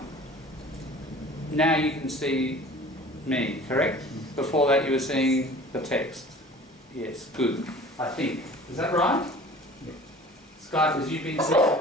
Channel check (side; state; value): both; normal; correlation 0.45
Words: Now you can see me, correct? Before that you were seeing the text. Yes, good, I think. Is that right? Yeah. Skypers, you've been seeing